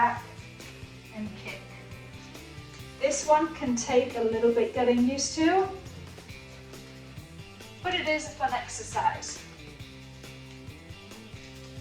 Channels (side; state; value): both; identical; correlation 1.00